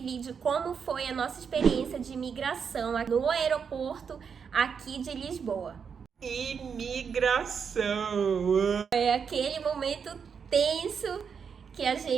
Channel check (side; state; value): left; quieter; 6.5 dB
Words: como foi a nossa experiência de imigração no aeroporto aqui de Lisboa. Imigração! É aquele momento tenso que a